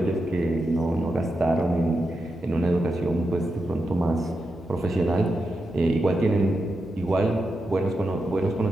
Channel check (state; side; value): normal; both; correlation 0.87